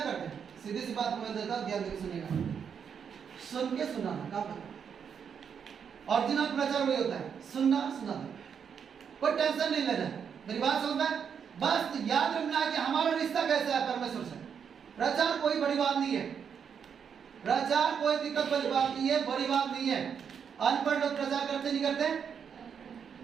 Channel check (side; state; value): left; quieter; 7.2 dB